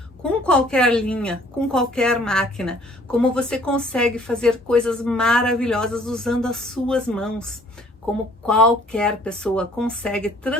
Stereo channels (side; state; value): both; normal; correlation 0.58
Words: com qualquer linha, com qualquer máquina, como você consegue fazer coisas maravilhosas usando as suas mãos, como qualquer pessoa consegue